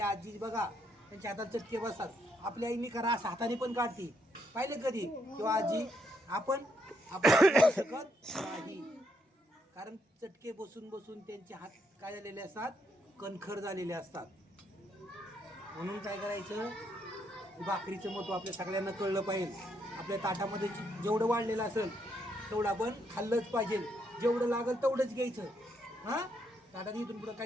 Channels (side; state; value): both; normal; correlation 0.76